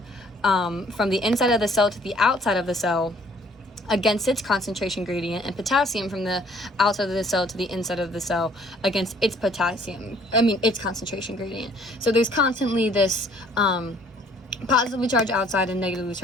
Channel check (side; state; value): both; normal; correlation 0.59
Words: from the inside of the cell to the outside of the cell against its concentration gradient, and potassium from the outside of the cell to the inside of the cell against its its concentration gradient. So there's constantly this positively charged outside and negatively